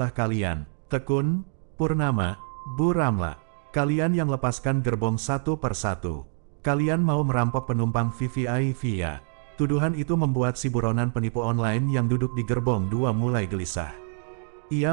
kalian, Tekun, Purnama, Bu Ramla. Kalian yang lepaskan gerbong 1 per 1. Kalian mau merampok penumpang VVIP ya. Tuduhan itu membuat si buronan penipu online yang duduk di gerbong 2 mulai gelisah.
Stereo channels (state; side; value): silent; left; digital silence